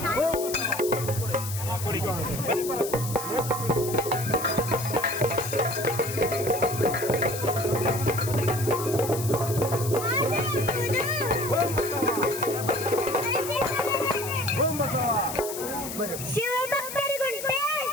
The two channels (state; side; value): noise; left; hiss, 8 dB below the sound